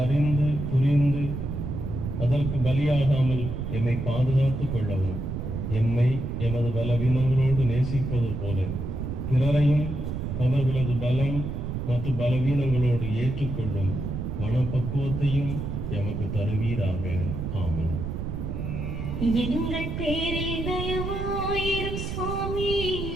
அறிந்து புரிந்து அதற்கு பலியாகாமல் எம்மை பாதுகாத்துக் கொள்ளவும், எம்மை எமது பலவீனங்களோடு நேசிப்பது போல பிறரையும் அவர்களது பலம் மற்றும் பலவீனங்களோடு ஏற்றுக்கொள்ளும் மனப்பக்குவத்தையும் எமக்கு தருவீராக. ஆமென். எங்கள் பேரில் தயவாயிரும் சுவாமி,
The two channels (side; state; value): right; noise; rumble, 4 dB below the sound